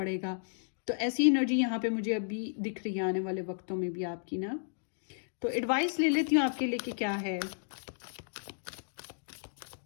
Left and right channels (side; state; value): right; silent; digital silence